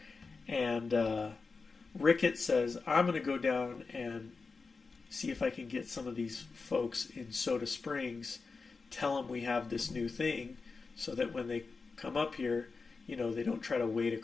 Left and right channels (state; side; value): quieter; right; 4.4 dB